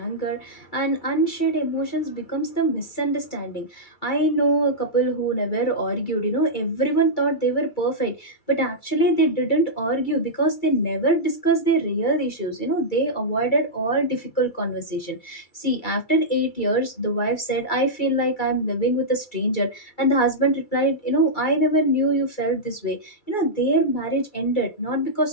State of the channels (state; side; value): late; right; 2.3 ms